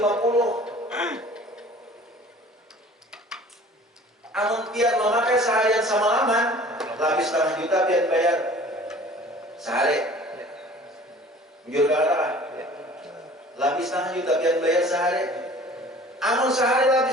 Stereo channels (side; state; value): both; normal; correlation 0.47